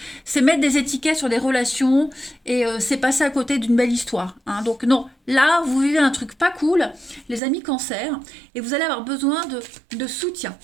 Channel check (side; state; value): left; drops out; at 7.4 s